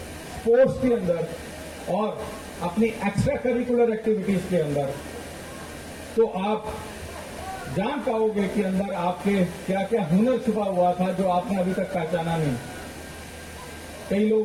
स्पोर्ट्स के अंदर और अपनी एक्स्ट्रा करिकुलर एक्टिविटीज के अंदर, तो आप जान पाओगे कि अंदर आपके क्या क्या हुनर छुपा हुआ था जो आपने अभी तक पहचाना नहीं। कई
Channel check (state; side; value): identical; both; correlation 1.00